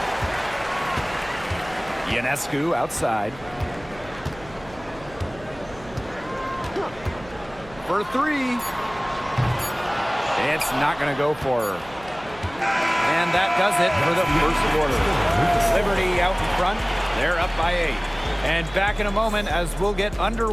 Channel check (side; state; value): right; noise; hum, 20 dB below the sound